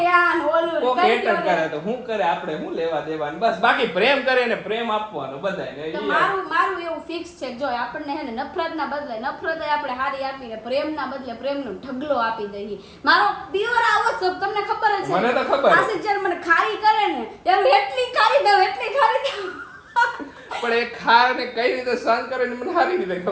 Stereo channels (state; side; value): identical; both; correlation 1.00